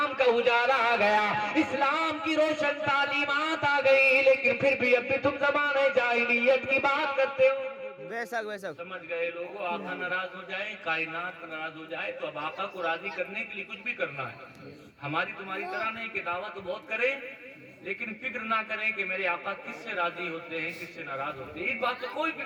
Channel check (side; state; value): both; identical; correlation 1.00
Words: کا اجالا آ گیا، اسلام کی روشن تعلیمات آ گئی، لیکن پھر بھی اب بھی تم زمانہ جاہلیت کی بات کرتے ہو۔ بے شک بے شک سمجھ گئے لوگوں، آقا ناراض ہو جائے، کائنات ناراض ہو جائے تو اب آقا کو راضی کرنے کے لیے کچھ بھی کرنا ہے۔ ہماری تمہاری طرح نہیں کہ دعویٰ تو بہت کریں لیکن فکر نہ کریں کہ میرے آقا کس سے راضی ہوتے ہیں کس سے ناراض ہوتے ہیں، اس بات کا کوئی